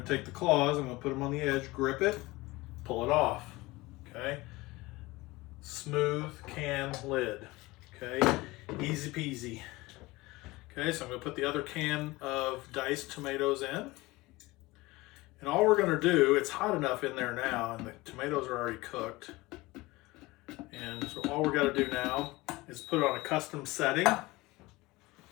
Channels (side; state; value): right; quieter; 21.1 dB